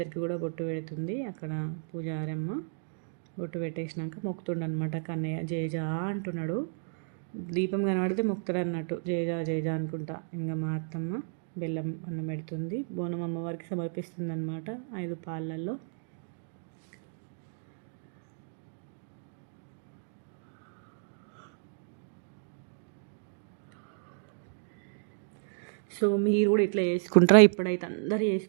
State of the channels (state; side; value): silent; left; digital silence